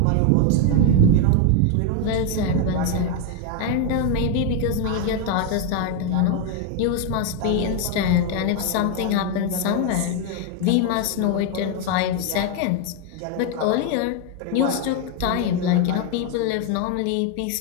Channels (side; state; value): both; different; correlation 0.01